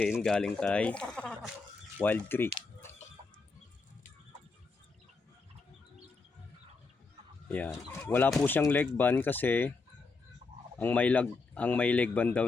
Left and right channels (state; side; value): quieter; right; 4.1 dB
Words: galing kay Wild Creek. Ayan. Wala po siyang leg band kasi ang may leg band daw